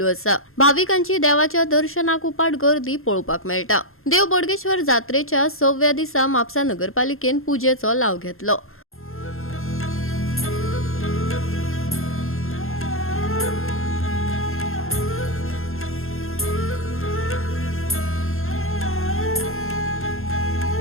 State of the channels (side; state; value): right; late; 0.61 ms